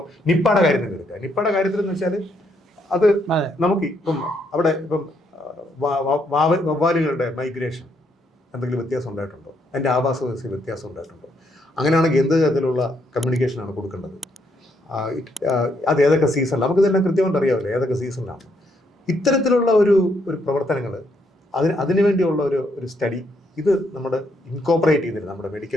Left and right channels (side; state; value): both; normal; correlation 0.74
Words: നിപ്പയുടെ കാര്യത്തിൽ എടുക്കുക. നിപ്പയുടെ കാര്യത്തിൽ എന്ന് വെച്ചാൽ അത് നമുക്ക് അവിടെ വവ്വാലുകളുടെ മൈഗ്രേഷൻ എന്തെങ്കിലും വ്യത്യാസം ഉണ്ടായിട്ടുണ്ടോ? അതിൻ്റെ ആവാസ വ്യവസ്ഥയിൽ വ്യത്യാസം ഉണ്ടായിട്ടുണ്ടോ? അങ്ങനെയാണെങ്കിൽ എന്ത് തരത്തിലുള്ള കമ്മ്യൂണിക്കേഷനാണ് കൊടുക്കേണ്ടത്? അത് ഏതൊക്കെ സീസണിൽ, നമുക്കിതെല്ലാം കൃത്യമായിട്ട് അറിയാമല്ലോ ഏതൊക്കെ സീസണിലാണ്. ഇത്തരത്തിലുള്ള ഒരു പ്രവർത്തനങ്ങൾ, അതിനു വേണ്ടിയുള്ള ഒരു സ്റ്റഡി ഇത് നമ്മുടെ ഇൻകോപ്പറേറ്റ് ചെയ്തിരുന്നത്, നമ്മുടെ